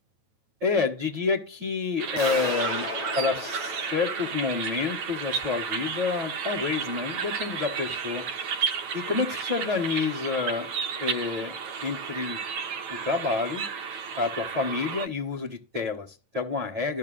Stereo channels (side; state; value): left; late; 9.1 ms